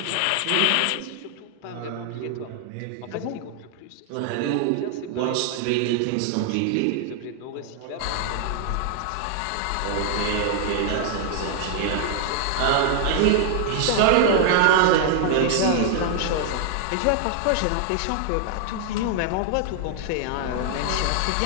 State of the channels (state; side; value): different; both; correlation 0.00